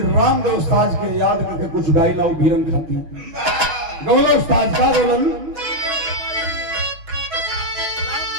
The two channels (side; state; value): left; late; 6.2 ms